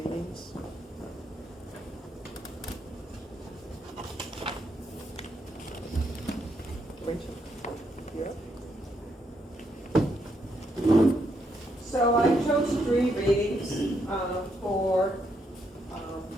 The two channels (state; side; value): normal; both; correlation 0.77